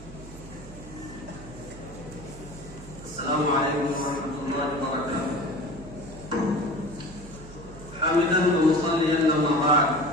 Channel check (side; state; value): right; noise; hum, 16 dB below the sound